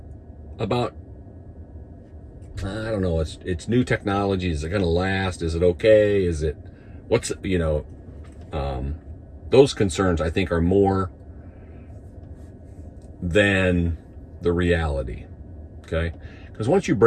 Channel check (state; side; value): identical; both; correlation 1.00